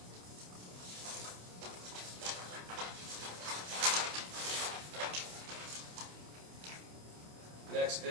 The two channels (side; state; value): left; late; 28 ms